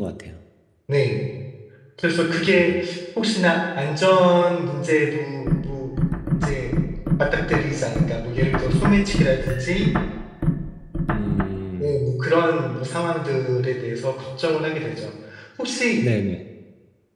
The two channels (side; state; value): both; identical; correlation 1.00